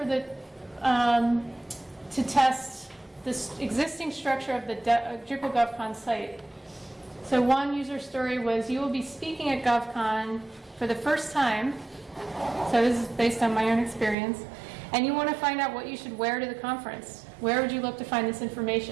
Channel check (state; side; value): drops out; left; at 14.2 s